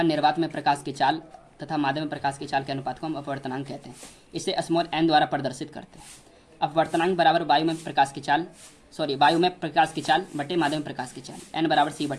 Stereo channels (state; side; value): identical; both; correlation 1.00